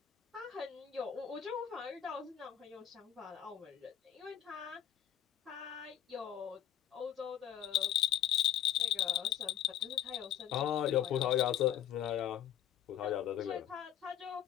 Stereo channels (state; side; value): quieter; right; 10.9 dB